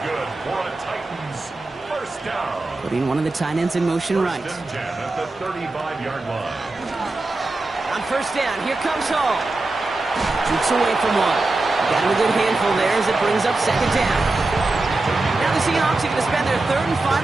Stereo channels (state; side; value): quieter; left; 3.1 dB